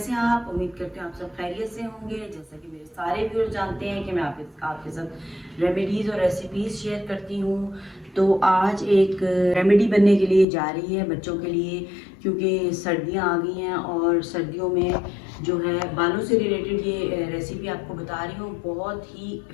हैं आप? उम्मीद करते हैं आप सब खैरियत से होंगे। जैसा कि मेरे सारे व्यूअर्स जानते हैं कि मैं आपके साथ रेमेडीज़ और रेसिपीज़ शेयर करती हूँ। तो आज एक रेमेडी बनने के लिए जा रही है बच्चों के लिए, क्योंकि सर्दियाँ आ गई हैं और सर्दियों में जो है बालों से रिलेटेड ये रेसिपी आपको बता रही हूँ। बहुत ही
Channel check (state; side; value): drops out; right; at 10.5 s